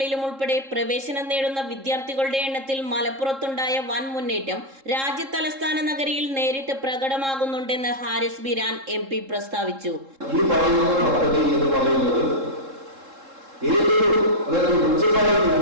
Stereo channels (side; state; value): left; late; 3.7 ms